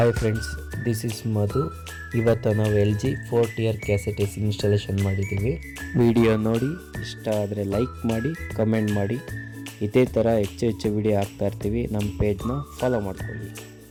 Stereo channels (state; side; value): identical; both; correlation 1.00